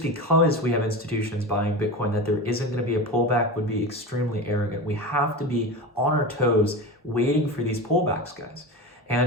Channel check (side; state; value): both; normal; correlation 0.26